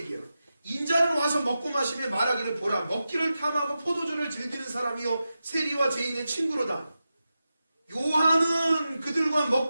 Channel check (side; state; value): both; inverted; correlation -0.91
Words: 인자는 와서 먹고 마시며 말하기를 보라. 먹기를 탐하고 포도주를 즐기는 사람이요 세리와 죄인의 친구로다. 요한은 그들과